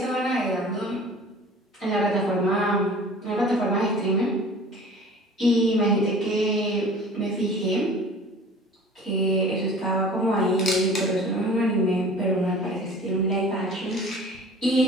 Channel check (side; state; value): both; normal; correlation 0.44